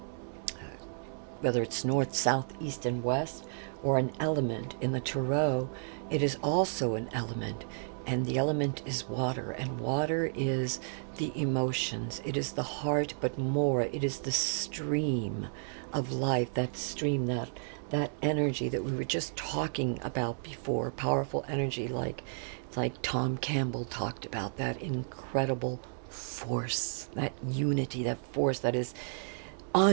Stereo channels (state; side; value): silent; left; 56 dB below the other